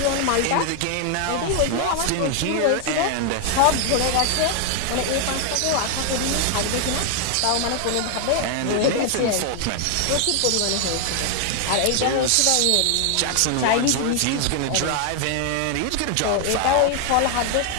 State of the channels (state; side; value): different; both; correlation 0.00